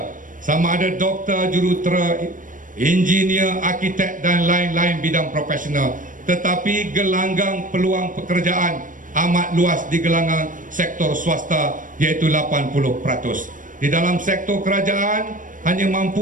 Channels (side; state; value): left; late; 0.38 ms